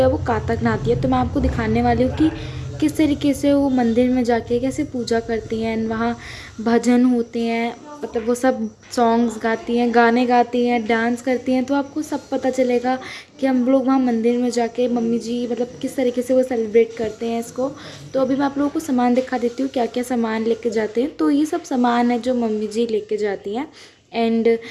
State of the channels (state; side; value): identical; both; correlation 1.00